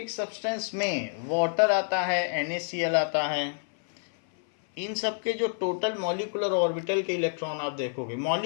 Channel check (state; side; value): silent; right; 57 dB below the other